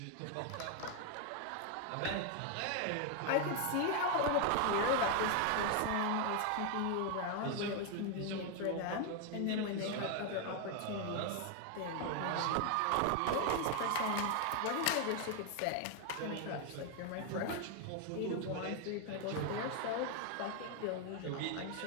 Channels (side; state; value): both; different; correlation 0.01